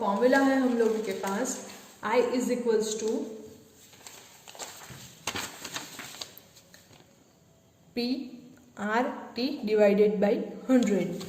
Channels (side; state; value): both; identical; correlation 1.00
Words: फॉर्मूला है हम लोगों के पास I is equals to PRT divided by 100।